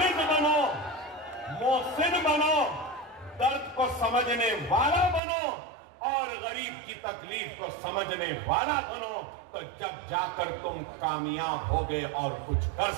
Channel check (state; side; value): drops out; left; at 5.2 s